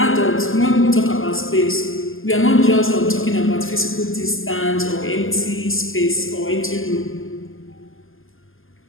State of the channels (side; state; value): right; late; 0.59 ms